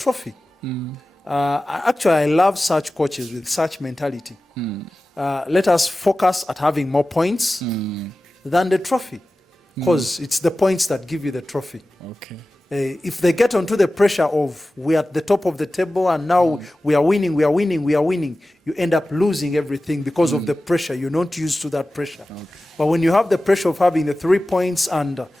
Actually, I love such coaches with such mentality. Let us focus at having more points than the trophy, because it's the points that give you the trophy. Okay. If they get onto the pressure of we're at the top of the table and now we are winning, you end up losing everything because of the pressure. You're not used to that pressure. Okay. But when you have the pressure of having the 3 points and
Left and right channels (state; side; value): normal; both; correlation 0.96